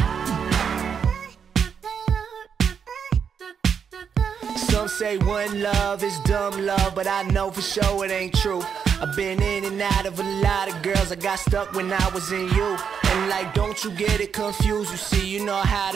Some say one love is dumb love, but I know for sure it ain't true. I've been in and out of a lot of girls. I got stuck when I was in you. And like, don't you get it confused. You see, you know how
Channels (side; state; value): left; quieter; 7.0 dB